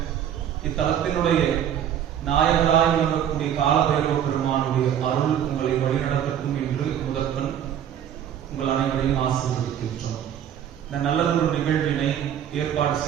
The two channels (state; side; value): quieter; left; 9.7 dB